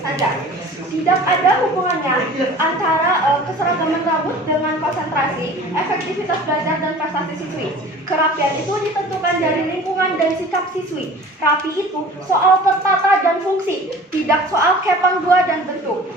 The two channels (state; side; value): normal; both; correlation 0.43